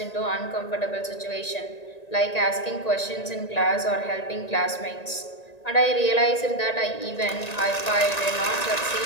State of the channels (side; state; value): right; late; 1.9 ms